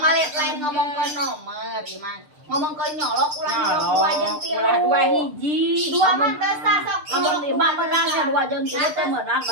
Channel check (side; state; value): left; late; 6.7 ms